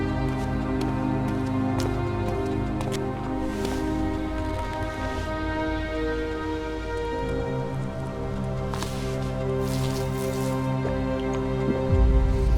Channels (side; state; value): both; identical; correlation 1.00